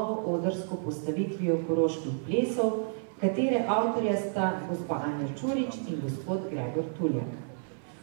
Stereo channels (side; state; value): left; silent; 58 dB below the other